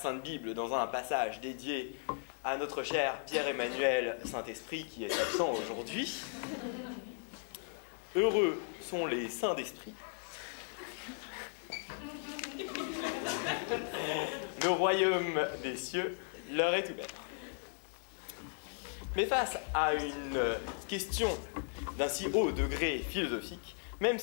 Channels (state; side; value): silent; right; digital silence